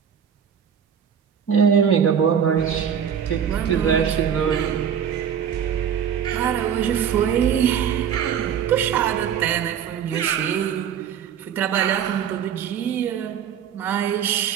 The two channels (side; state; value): left; quieter; 8.3 dB